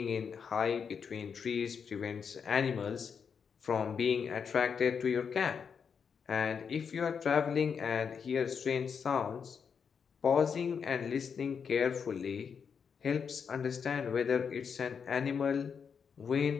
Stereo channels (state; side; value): quieter; right; 6.5 dB